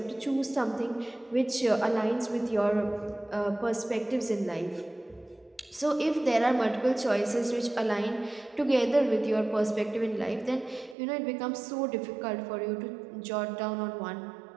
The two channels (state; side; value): drops out; left; at 11.0 s